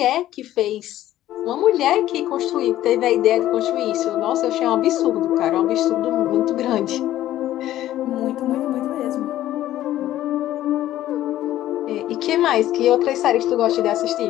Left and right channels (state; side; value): quieter; right; 13.6 dB